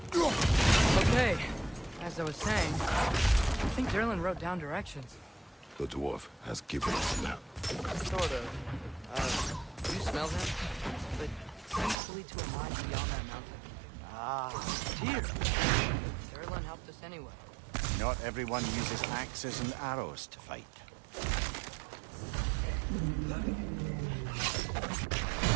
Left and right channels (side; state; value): left; drops out; at 12.0 s